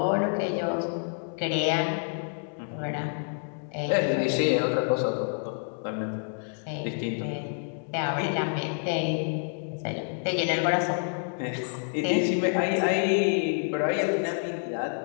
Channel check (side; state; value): right; silent; 56 dB below the other